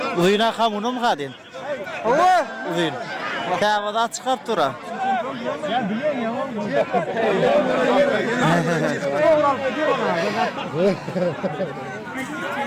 Uyuna kamunu mu kadın? Allah! Uyun. Kavada çıkıp dura.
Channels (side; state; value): both; identical; correlation 1.00